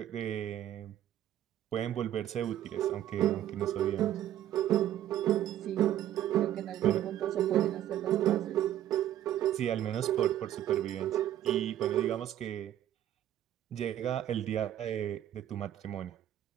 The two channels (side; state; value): left; quieter; 11.8 dB